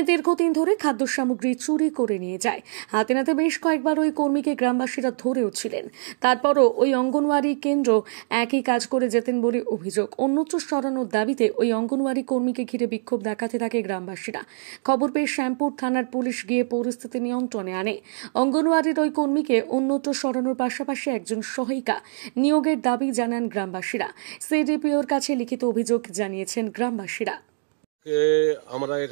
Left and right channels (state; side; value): silent; left; digital silence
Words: দীর্ঘদিন ধরে খাদ্য সামগ্রী চুরি করে নিয়ে যায়। হাতে নাতে বেশ কয়েকবার ওই কর্মীকে গ্রামবাসীরা ধরেও ছিলেন। তারপরও ওই অঙ্গনওয়াড়ি কেন্দ্র একই কাজ করে যেতেন বলে অভিযোগ। অন্যত্র সরানোর দাবিতে ওই অঙ্গনওয়াড়ি কর্মীকে ঘিরে বিক্ষোভ দেখাতে থাকে গ্রামবাসীরা। খবর পেয়ে শ্যামপুর থানার পুলিশ গিয়ে পরিস্থিতি নিয়ন্ত্রণে আনে। অঙ্গনওয়াড়ির ওই কর্মীকে অন্যত্র সরানোর পাশাপাশি একজন সহায়িকা নিয়োগের দাবি জানান গ্রামবাসীরা। সিডিপিওর কাছে লিখিত অভিযোগ জানিয়েছেন গ্রামবাসীরা। আমরা